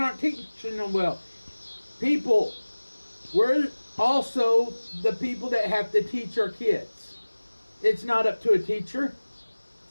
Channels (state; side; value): inverted; both; correlation -1.00